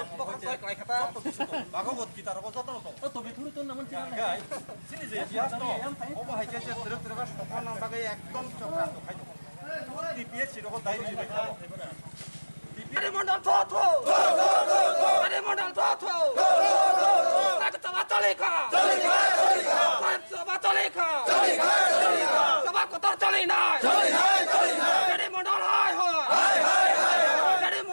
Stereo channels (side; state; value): both; inverted; correlation -1.00